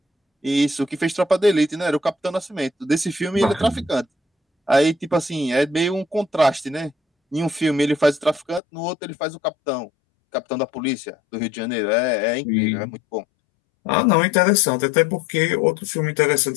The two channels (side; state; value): right; drops out; at 8.6 s